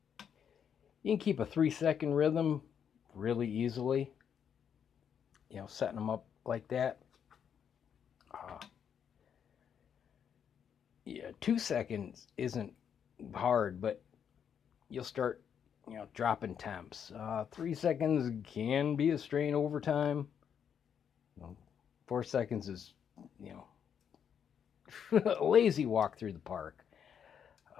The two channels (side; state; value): right; quieter; 8.0 dB